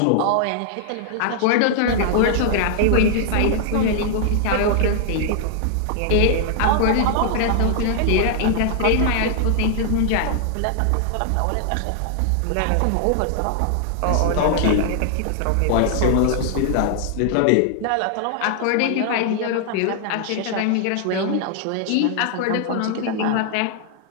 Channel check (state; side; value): different; both; correlation -0.01